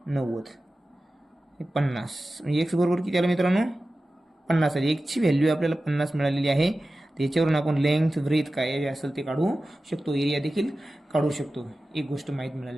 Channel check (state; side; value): normal; both; correlation 0.95